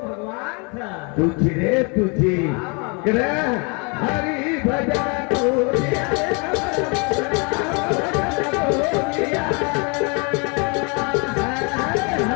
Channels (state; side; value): quieter; right; 33.1 dB